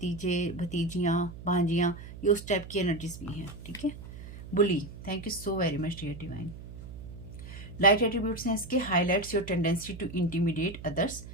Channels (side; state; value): right; noise; hum, 13 dB below the sound